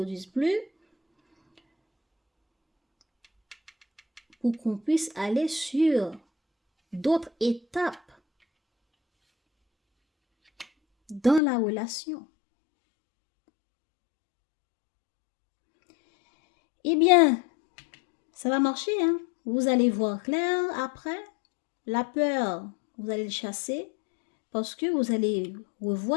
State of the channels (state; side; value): drops out; right; at 11.4 s